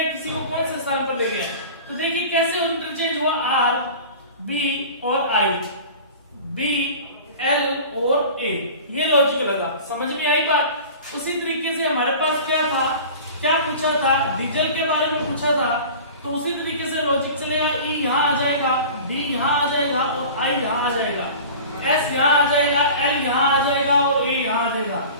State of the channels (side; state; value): both; inverted; correlation -0.38